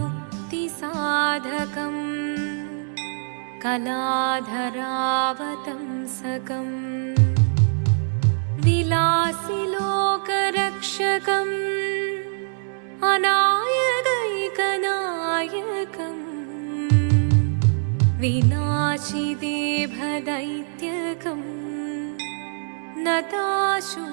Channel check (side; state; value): left; silent; 63 dB below the other